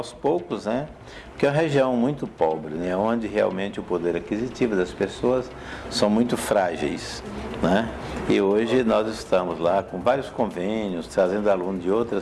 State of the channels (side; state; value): both; identical; correlation 1.00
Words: poucos, né? Porque é uma região muito pobre, né? Onde realmente o poder aquisitivo das pessoas são muito frágeis, né? E hoje nós estamos lá com vários convênios, trazendo alunos de